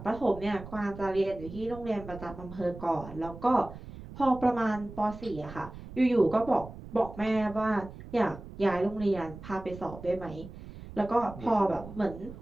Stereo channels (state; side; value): noise; right; rumble, 14 dB below the sound